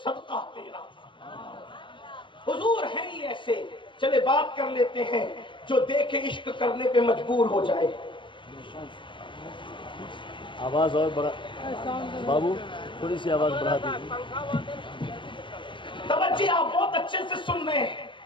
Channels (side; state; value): right; late; 0.24 ms